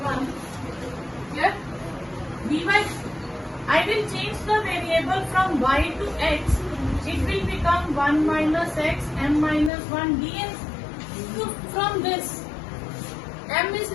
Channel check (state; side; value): drops out; right; at 9.7 s